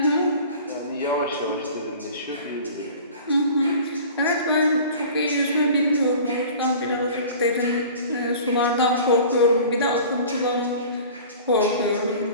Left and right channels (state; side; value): inverted; both; correlation -0.42